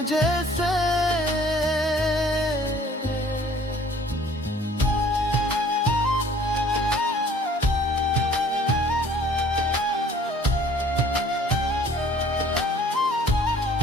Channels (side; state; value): both; normal; correlation 0.54